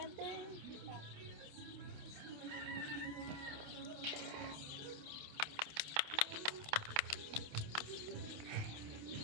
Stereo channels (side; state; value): left; late; 28 ms